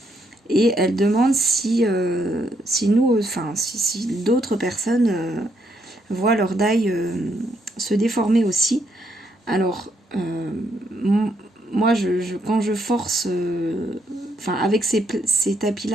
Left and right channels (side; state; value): both; normal; correlation 0.74